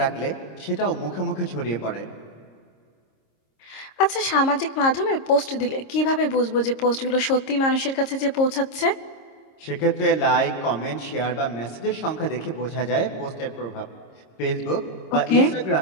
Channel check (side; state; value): right; late; 26 ms